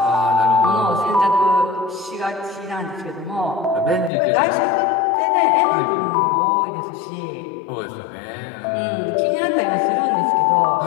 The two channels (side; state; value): right; drops out; at 4.1 s